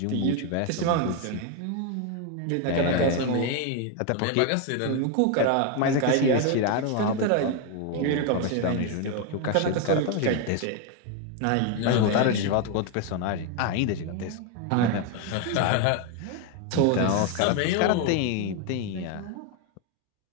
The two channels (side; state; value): both; different; correlation 0.01